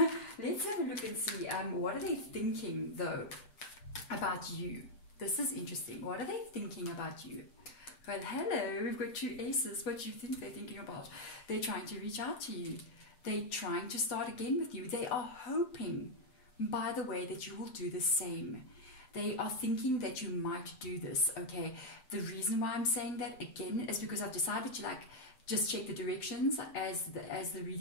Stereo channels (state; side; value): late; right; 7.8 ms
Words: Let's have a look and see, what are they thinking, though, about you? This is interesting. What are they thinking about you? Well, hello, we've got 2 aces. What do you think they're thinking about? They're trying to reach out to you. They're trying to start again with you. They are hoping, by the way, that you will do the same. They are thinking that you might do this, okay? The reason why I'm saying that, again, is because I've decided to, like, just check the directions as the